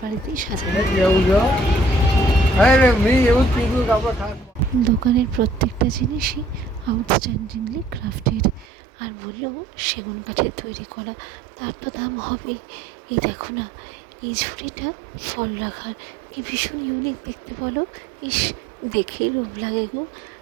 বাড়িতেই সাজানো। দোকানের প্রত্যেকটা জিনিসই আউটস্ট্যান্ডিংলি ক্রাফটেড। আর বললো সেগুন কাঠের তৈরি করা, তার তো দাম হবেই। এই দেখো না, এই ঝুড়িটা ফল রাখার, কি ভীষণ ইউনিক দেখতে বলো। ইস, দেখেই লোভ লাগে গো।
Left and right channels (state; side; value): drops out; left; at 8.7 s